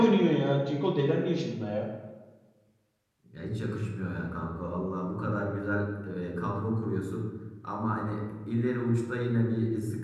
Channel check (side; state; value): both; identical; correlation 1.00